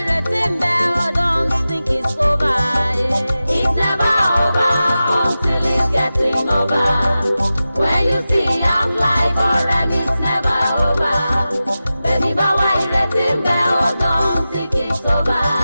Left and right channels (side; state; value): both; inverted; correlation -0.94